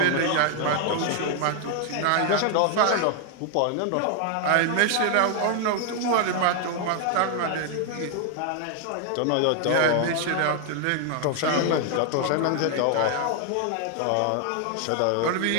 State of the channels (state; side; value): different; both; correlation 0.00